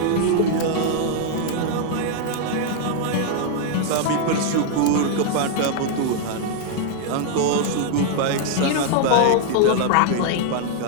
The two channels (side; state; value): both; different; correlation 0.00